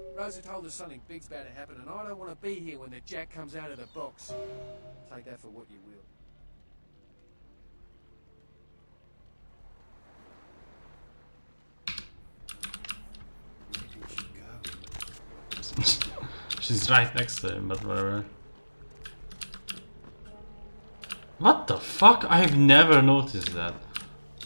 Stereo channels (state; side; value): inverted; both; correlation -1.00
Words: Rosa told us something big's about to happen, and I don't want to be here when the jack comes out of the box. Take that for what you will. She's right next to him, but whatever. What the fuck? I've never noticed that.